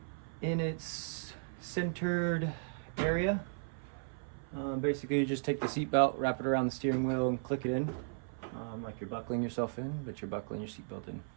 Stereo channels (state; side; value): silent; left; 54 dB below the other